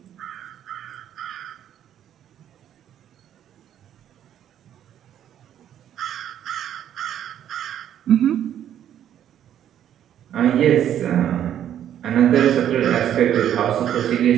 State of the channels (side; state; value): left; quieter; 10.5 dB